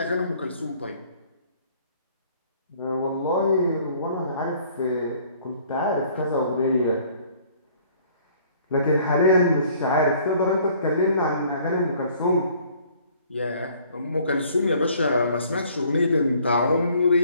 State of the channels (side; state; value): both; inverted; correlation -0.58